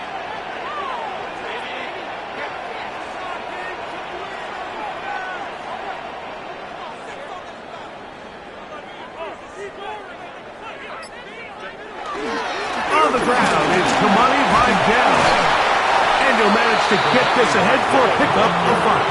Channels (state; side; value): identical; both; correlation 1.00